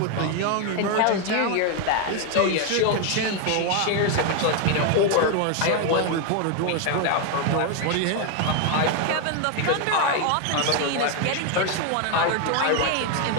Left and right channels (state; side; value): different; both; correlation 0.01